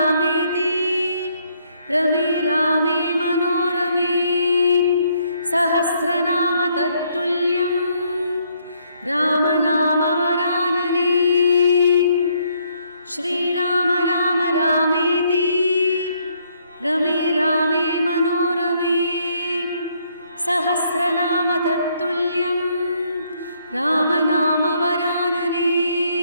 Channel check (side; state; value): both; inverted; correlation -0.70